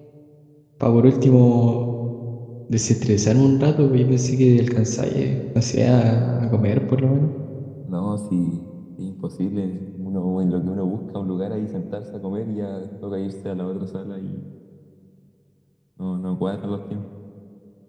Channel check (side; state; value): both; identical; correlation 1.00